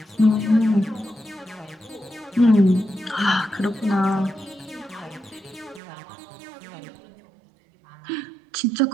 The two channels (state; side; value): drops out; left; at 5.8 s